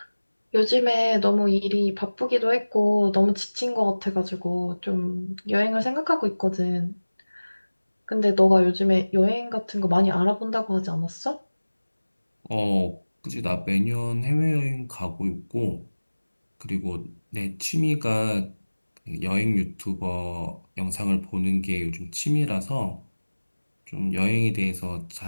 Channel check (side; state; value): both; inverted; correlation -1.00